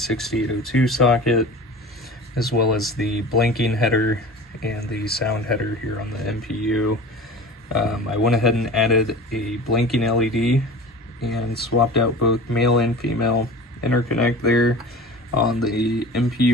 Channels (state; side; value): normal; both; correlation 0.37